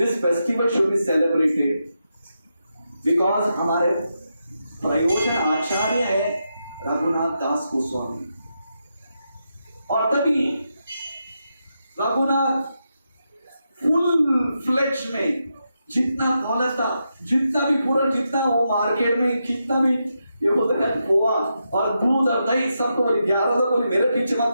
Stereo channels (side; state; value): both; inverted; correlation -0.85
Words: festival should be celebrated because हमारे प्रयोजन आचार्य है रघुनाथ दास गोस्वामी। और तभी रघुनाथ फुल फ्लेज में जितना दौलत था, जितना भी पूरा, जितना वो मार्केट में कितना भी ये बोलते हैं पोहा और दूध और दही, सबको बोले 11 तो बोले मेरे पीछे मत